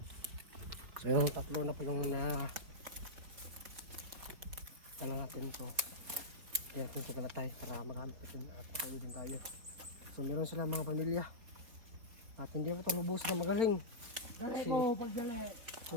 So yung tatlo na po yung na tala natin to. Kaya natin sa kanatay para magamit natin at makauwi din tayo. So meron sila mga pamilya. At hindi pa ito lubusan na magaling. Kasi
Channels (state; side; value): late; left; 4.2 ms